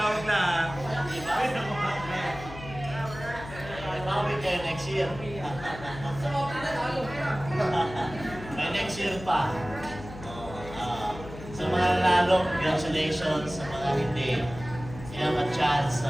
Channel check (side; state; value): left; noise; hum, 13 dB below the sound